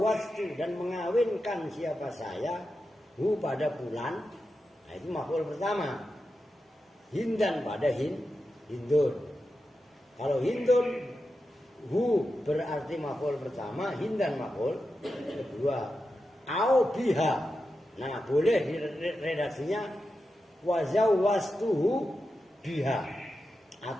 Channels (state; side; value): normal; both; correlation 0.90